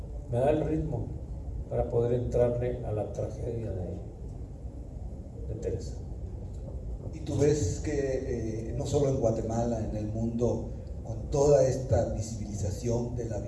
me da el ritmo para poder entrarle a la tragedia de Teresa. Y tú ves que no solo en Guatemala, en el mundo, con toda esta visibilización de la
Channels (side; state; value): both; identical; correlation 1.00